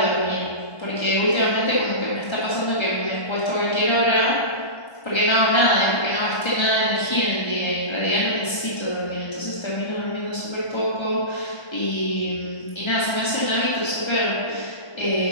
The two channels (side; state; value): right; late; 1.3 ms